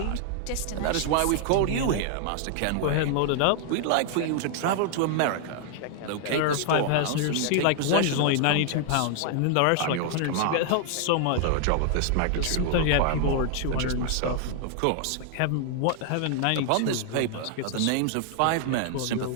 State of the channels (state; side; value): different; both; correlation 0.00